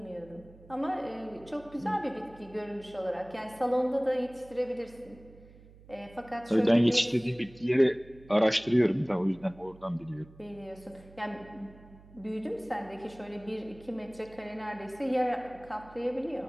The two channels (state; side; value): noise; right; hum, 22 dB below the sound